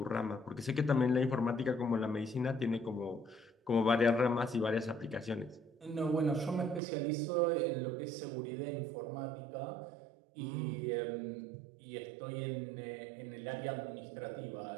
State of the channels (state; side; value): drops out; left; at 6.8 s